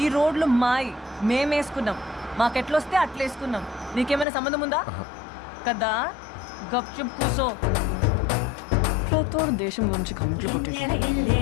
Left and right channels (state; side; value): drops out; right; at 4.2 s